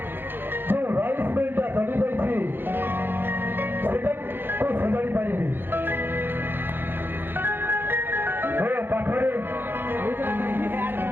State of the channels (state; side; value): late; left; 0.10 ms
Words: ଯେଉଁ ରାଇସ୍ ମିଲଟା ଚଳିଯାଇଛି ସେଟାକୁ ସଜାଡ଼ି ପାରିବି? ମୋ ପାଖରେ